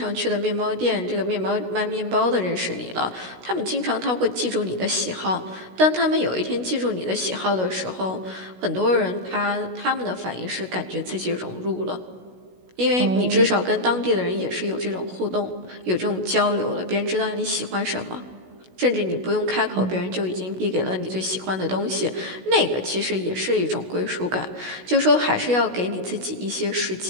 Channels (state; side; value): late; left; 16 ms